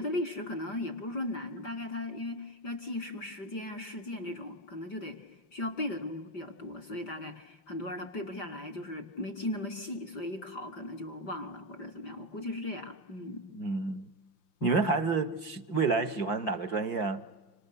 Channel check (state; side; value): late; right; 5.8 ms